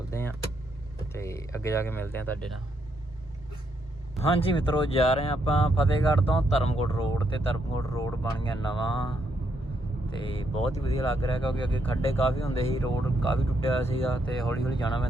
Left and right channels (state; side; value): normal; both; correlation 0.77